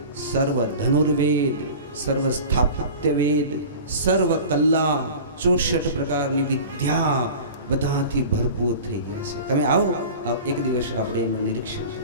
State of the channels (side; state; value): both; inverted; correlation -0.37